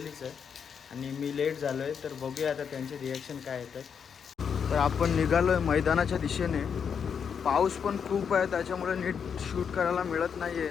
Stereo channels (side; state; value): right; quieter; 7.0 dB